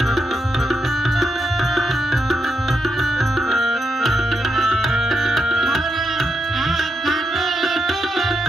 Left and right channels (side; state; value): both; normal; correlation 0.83